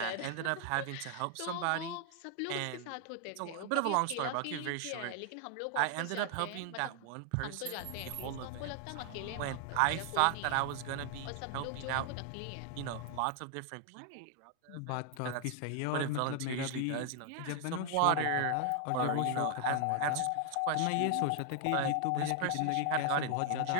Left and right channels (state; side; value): different; both; correlation 0.00